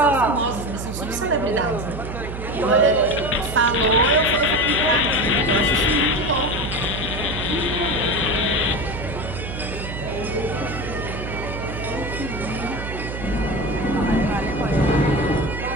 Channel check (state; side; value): noise; right; hum, 8 dB below the sound